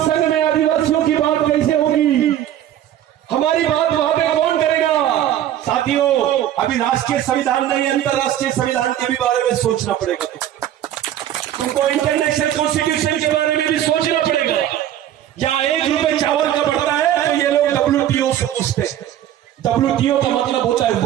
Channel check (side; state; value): left; quieter; 11.5 dB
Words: संघ में आदिवासियों की बात कैसे होगी, हमारी बात वहां पे कौन करेगा। साथियों, अभी राष्ट्रीय संविधान नहीं, अंतरराष्ट्रीय संविधान के भी बारे में सोचना पड़ेगा। तुमको इंटरनेशनल कॉन्स्टिट्यूशन के बारे में भी सोचना पड़ेगा। यहाँ ₹1 चावल का बढ़ता है तो ये लोग WTO से पूछते हैं। WTO का मतलब होता है